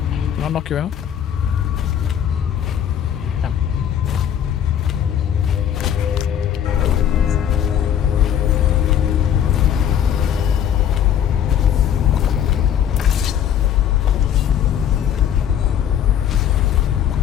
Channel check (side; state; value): right; quieter; 9.5 dB